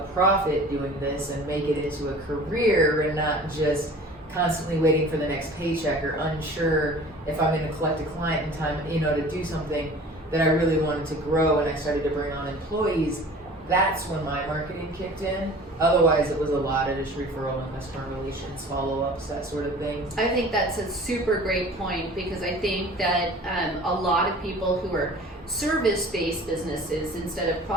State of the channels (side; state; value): both; normal; correlation 0.44